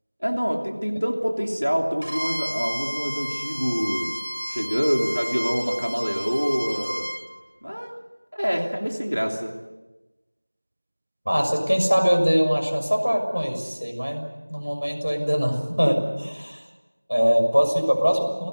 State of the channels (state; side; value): inverted; both; correlation -1.00